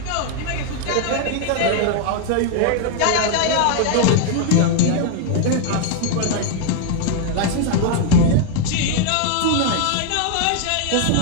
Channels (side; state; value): both; different; correlation 0.00